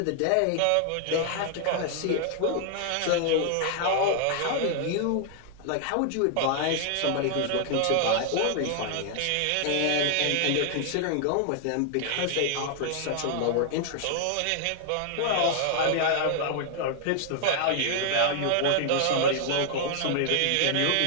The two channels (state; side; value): different; both; correlation 0.00